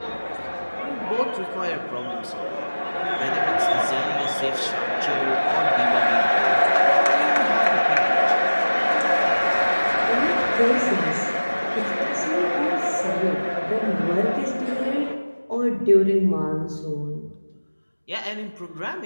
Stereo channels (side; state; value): both; inverted; correlation -1.00